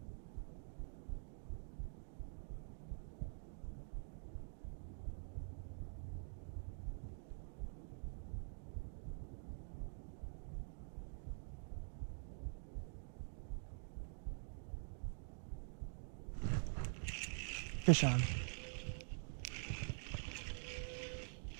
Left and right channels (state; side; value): silent; left; digital silence